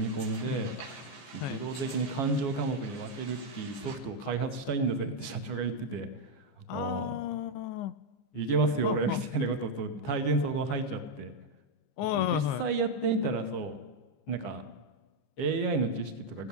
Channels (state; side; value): late; right; 15 ms